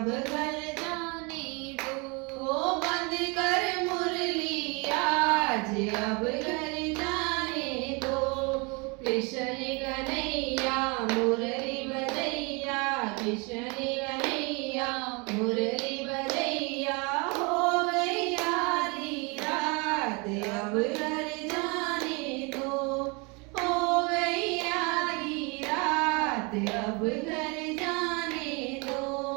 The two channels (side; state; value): left; quieter; 30.2 dB